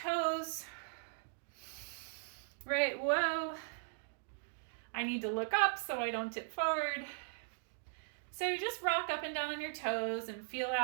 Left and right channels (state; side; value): silent; left; digital silence